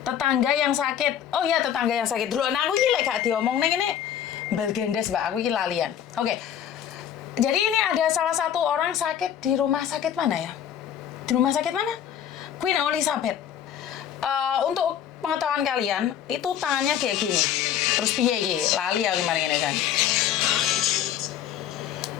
Tetangga yang sakit, oh ya tetangga yang sakit dulu. Nah aku ini gak diomong nih ini belgendes Mbak, aku ini lalian. Oke. Jadi ini ada salah satu orang sakit di rumah sakit mana ya? Di rumah sakit mana? Queen Elizabeth. Untuk pengetahuan kalian, itu tangannya kayak gini. Terus piye iki? Lali ya gimana ini kan?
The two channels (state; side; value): quieter; right; 9.8 dB